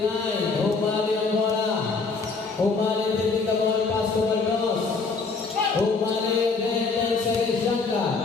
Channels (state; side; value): quieter; right; 4.3 dB